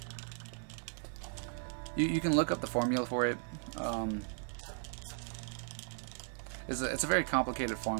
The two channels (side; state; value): left; silent; 53 dB below the other